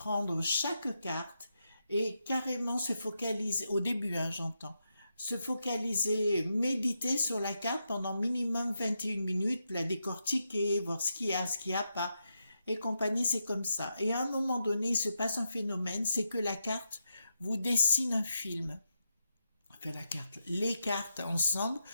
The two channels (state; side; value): inverted; both; correlation -0.85